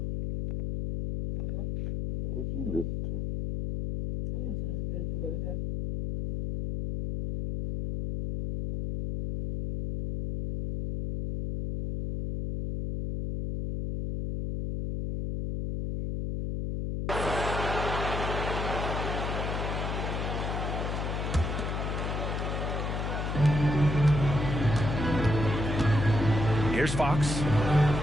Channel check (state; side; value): noise; left; hum, 2 dB below the sound